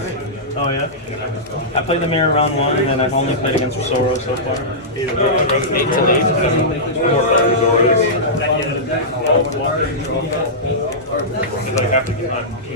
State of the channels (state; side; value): normal; both; correlation -0.14